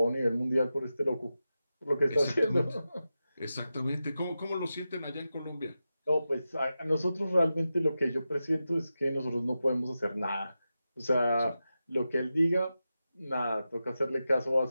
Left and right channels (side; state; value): both; inverted; correlation -0.92